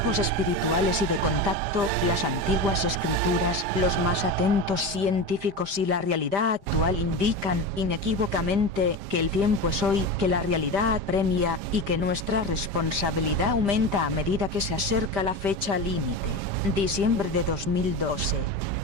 espirituales y de contacto, las antiguas escrituras, los más atentos científicos y la realidad actual indican, inequívocamente, que el tiempo es hoy, que la realidad apremia, y que nuestra responsabilidad aumenta a medida que se acerca la fecha límite. Diciembre de 2012.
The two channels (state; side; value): late; left; 5.1 ms